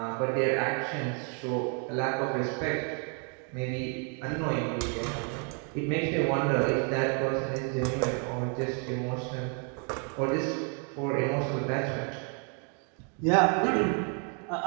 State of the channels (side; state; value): left; quieter; 39.6 dB